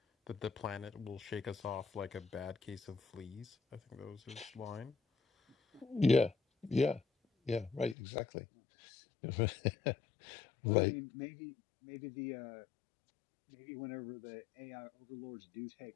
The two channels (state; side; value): drops out; right; at 8.0 s